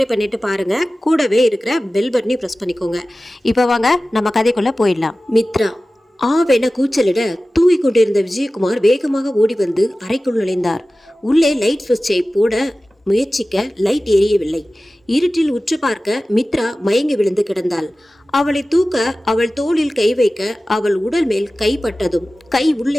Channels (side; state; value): both; normal; correlation 0.96